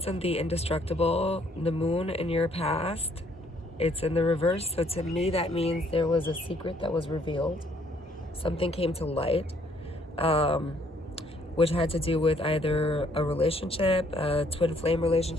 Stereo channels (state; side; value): normal; both; correlation 0.65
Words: and the indestructible, the moon in your past, it's in the reverse. So to me, that means there was a secret that was revealed. Something came to light, which had to do with either a relationship, a twin flame